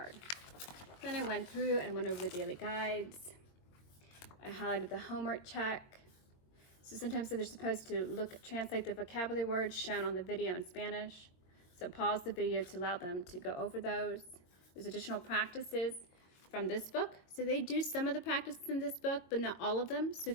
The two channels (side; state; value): right; late; 22 ms